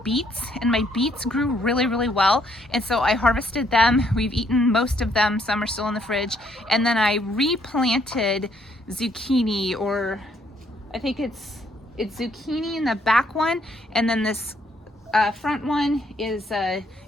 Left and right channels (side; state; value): both; normal; correlation 0.69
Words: beets, and my beets grew really, really well. And so I harvested them. We've eaten most of them. Some are still in the fridge. And then I replanted zucchini, or I think it's zucchini in the back one. And then this front one is